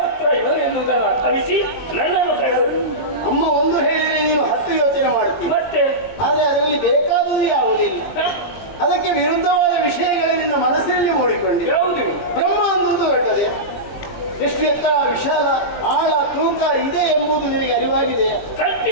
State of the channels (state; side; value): late; right; 20 ms